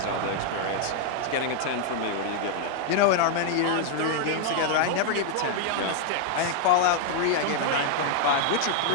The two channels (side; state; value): both; different; correlation 0.00